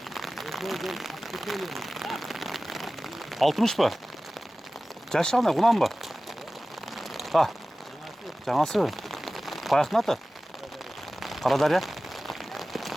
60 ба? Жашы кандай, кунан ба? Жаңасы. Каяктын аты? Карадария.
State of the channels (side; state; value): both; normal; correlation 0.97